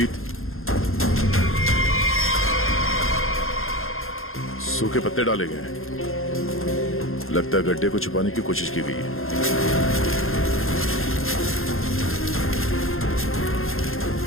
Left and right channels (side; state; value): right; late; 0.61 ms